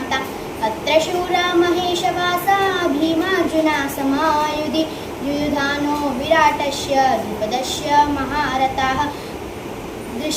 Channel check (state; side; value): identical; both; correlation 1.00